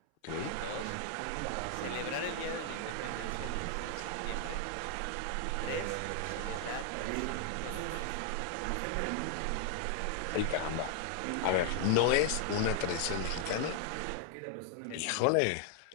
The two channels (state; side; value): different; both; correlation 0.00